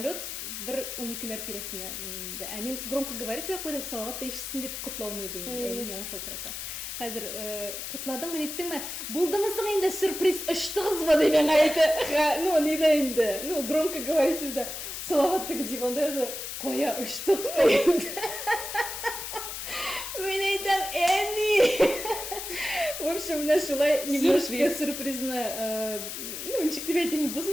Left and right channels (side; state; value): left; noise; hiss, 7 dB below the sound